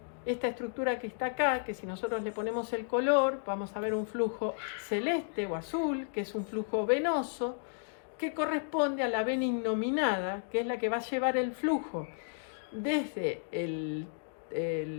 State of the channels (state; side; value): silent; right; digital silence